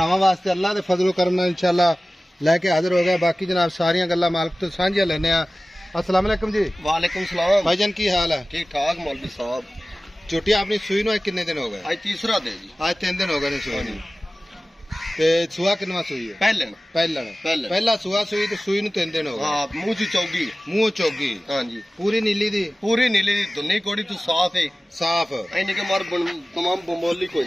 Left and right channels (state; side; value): normal; both; correlation 0.97